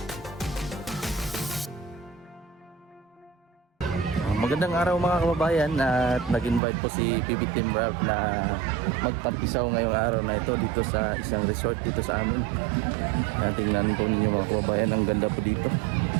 Magandang araw mga kababayan at nag-invite po si PB Team Ralph na magtampisaw ngayong araw na ito dito sa isang resort dito sa amin. Tingnan po ninyo mga kababayan, ang ganda po dito.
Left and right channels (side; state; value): left; drops out; at 6.6 s